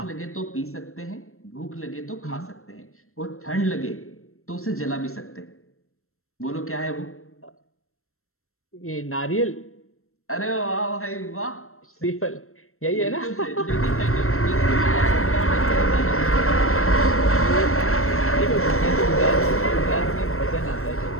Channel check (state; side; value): late; right; 0.62 ms